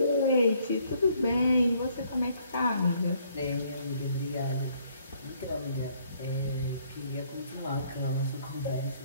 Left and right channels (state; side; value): inverted; both; correlation -0.66